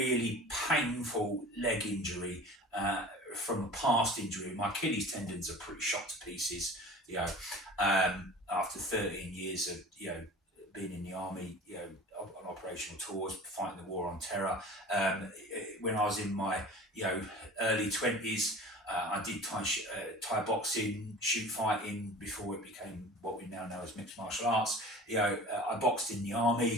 painful leg injury from a past injury. My Achilles tendons are pretty shot to pieces, you know, after 13 years of, you know, being in the army, you know, on operational tours, fighting the war on terror. When I was in my, you know, early 20s, I did Thai boxing, shoot fighting before it became what we now know as mixed martial arts. You know, I boxed in the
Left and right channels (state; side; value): normal; both; correlation 0.40